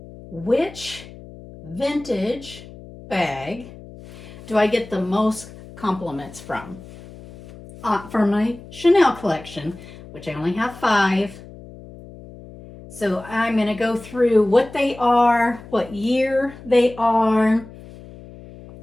which vintage bag do I get the most compliments from? For my Chanel collection, which I only have 5. So I'm going to go through what they are, what year they are,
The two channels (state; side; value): noise; left; hum, 18 dB below the sound